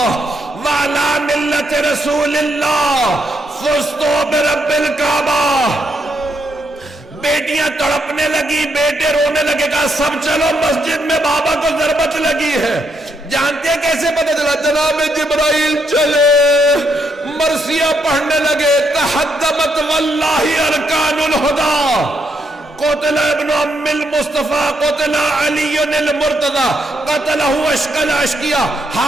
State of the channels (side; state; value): both; normal; correlation 0.77